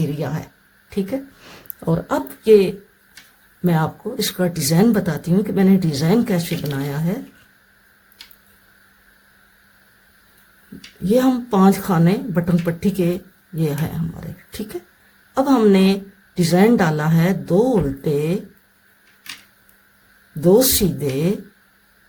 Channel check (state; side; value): identical; both; correlation 1.00